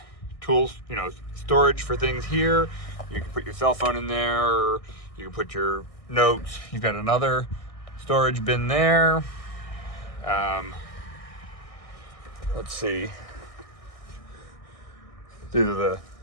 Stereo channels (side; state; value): right; late; 1.6 ms